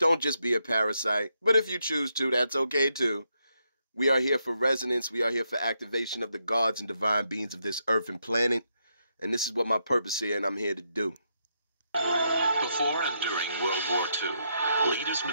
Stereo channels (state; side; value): inverted; both; correlation -0.80